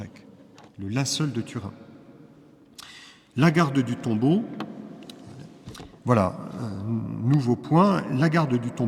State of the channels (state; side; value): identical; both; correlation 1.00